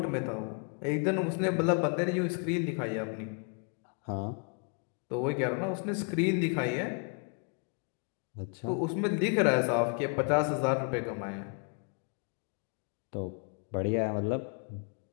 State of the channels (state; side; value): quieter; right; 38.3 dB